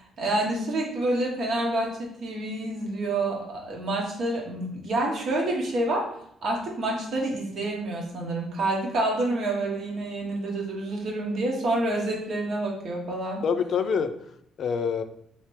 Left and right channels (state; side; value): normal; both; correlation 0.65